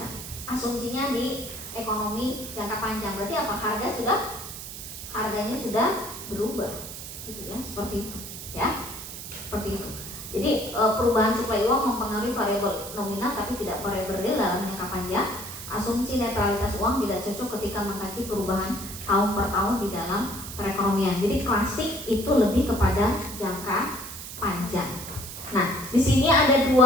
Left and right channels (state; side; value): noise; right; hiss, 10 dB below the sound